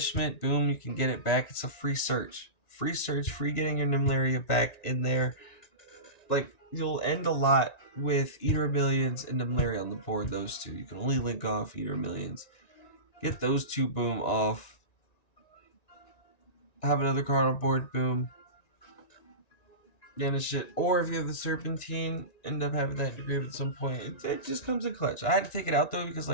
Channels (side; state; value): right; late; 1.9 ms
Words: boom, you can get it back. It's a free search. free search, free getting your Nemleria back in there. Like, you'll end a lot with Eater of Millions and Nemleria on the board, those two. You can only link off Eater of Millions. Get those two, boom, off. Have another card on board, boom. Banish it. Or if you have the Serpentine, end up having that engraved at some point. It just comes in clutch. I had to take it out, though, because